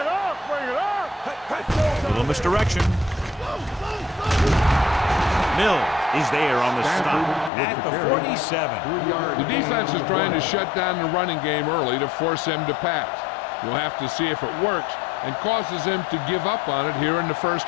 up. A little misdirection. Mills is there on the stop at the 47. The defense is trying to shut down the running game early to force him to pass. We'll have to see if it works and causes him to give up on it here in the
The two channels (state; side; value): drops out; right; at 7.5 s